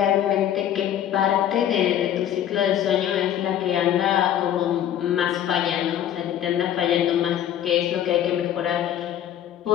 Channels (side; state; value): right; quieter; 10.6 dB